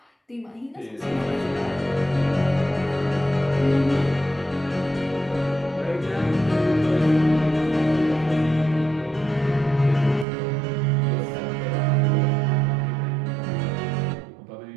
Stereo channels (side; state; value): left; drops out; at 10.2 s